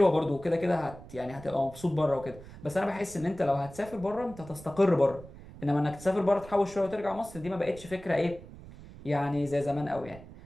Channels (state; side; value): noise; right; rumble, 17 dB below the sound